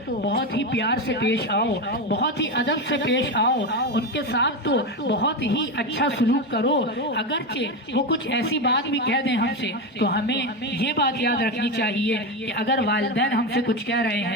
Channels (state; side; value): normal; both; correlation 0.15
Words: بہت ہی پیار سے پیش آؤ، بہت ہی ادب سے پیش آؤ، ان کے ساتھ تو بہت ہی اچھا سلوک کرو۔ اگرچہ وہ کچھ ایسی بات بھی کہہ دیں ہم سے تو ہمیں یہ بات یاد رکھنی چاہیے کہ اگر والدین ہم سے کچھ کہہ رہے